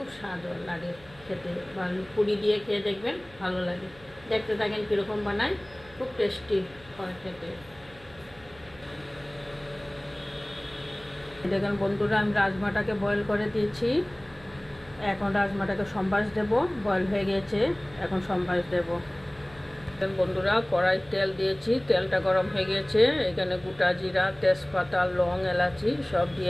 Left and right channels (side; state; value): right; noise; hum, 24 dB below the sound